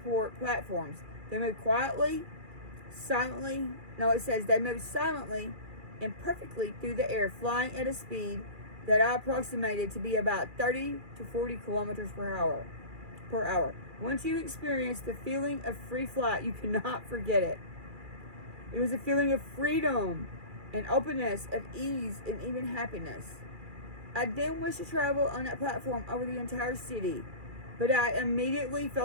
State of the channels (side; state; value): left; late; 2.4 ms